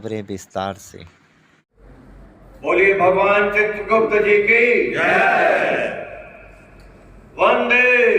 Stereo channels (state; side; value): identical; both; correlation 1.00